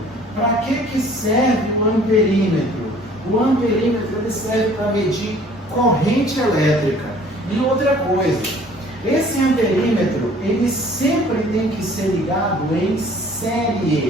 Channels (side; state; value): both; normal; correlation 0.53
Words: Para que serve o amperímetro? O amperímetro ele serve para medir corrente elétrica. E outra coisa, esse amperímetro ele sempre tem que ser ligado em